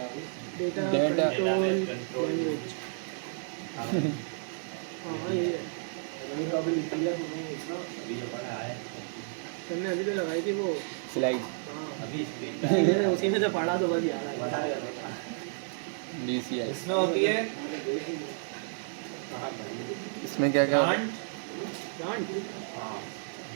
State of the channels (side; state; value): left; silent; digital silence